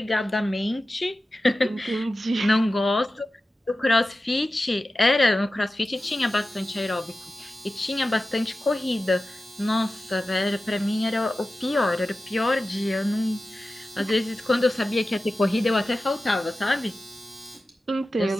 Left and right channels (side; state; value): both; normal; correlation 0.94